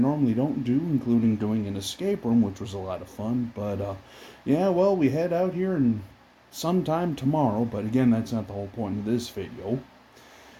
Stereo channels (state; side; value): identical; both; correlation 1.00